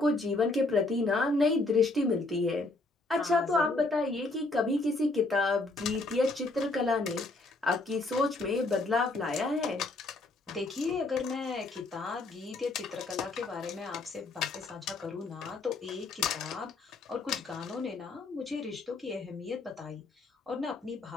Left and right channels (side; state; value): right; quieter; 3.2 dB